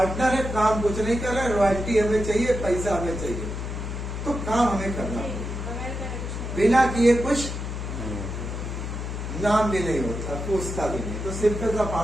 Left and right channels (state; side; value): noise; left; hum, 5 dB below the sound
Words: है, काम कुछ नहीं कर रहे, रॉयल्टी हमें चाहिए, पैसा हमें चाहिए, तो काम हमें करना पड़ेगा। बिना किए कुछ नाम भी नहीं होता, पूछता भी नहीं। तो सिंपल सा